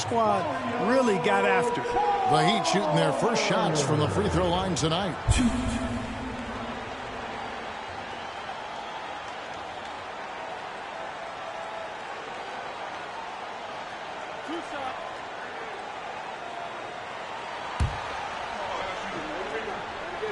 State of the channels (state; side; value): identical; both; correlation 1.00